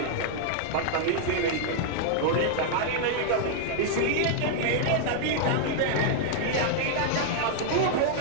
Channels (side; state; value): both; different; correlation -0.01